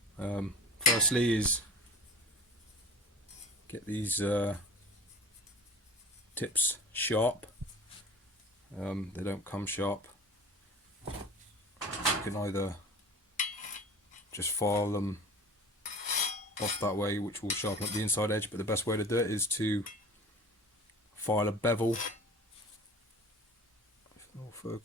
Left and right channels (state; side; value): normal; both; correlation 0.40